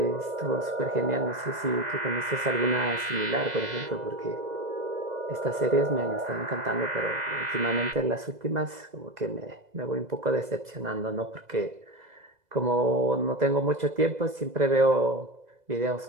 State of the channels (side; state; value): left; late; 2.0 ms